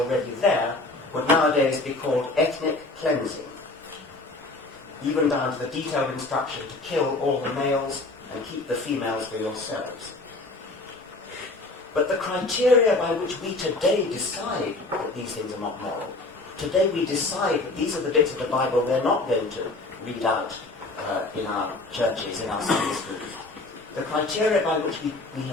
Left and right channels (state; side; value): quieter; right; 3.0 dB